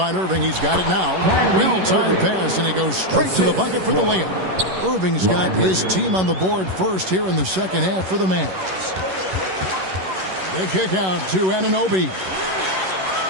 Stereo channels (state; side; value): late; left; 11 ms